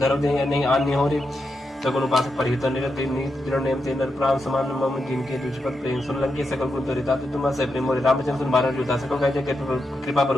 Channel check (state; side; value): normal; both; correlation 0.86